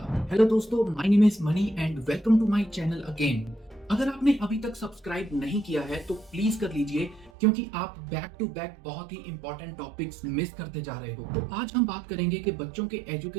हेलो दोस्तों, my name is Mani and welcome to my channel again. अगर आपने अभी तक सब्सक्राइब नहीं किया है तो प्लीज कर लीजिए, क्योंकि आप बैक टू बैक बहुत ही इंपॉर्टेंट टॉपिक्स मिस करते जा रहे हो। तो आज हम बात करेंगे कि बच्चों के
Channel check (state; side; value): drops out; left; at 7.3 s